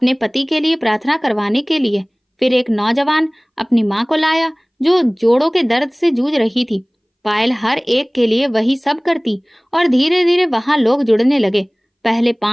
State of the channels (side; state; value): both; identical; correlation 1.00